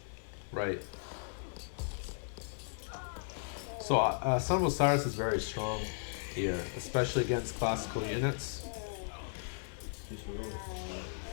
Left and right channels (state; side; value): silent; right; digital silence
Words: Right. So Son of Osiris is very strong here, especially against classical units. Just heroic.